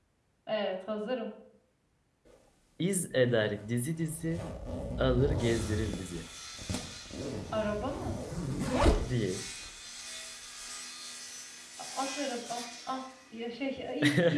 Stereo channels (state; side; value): identical; both; correlation 1.00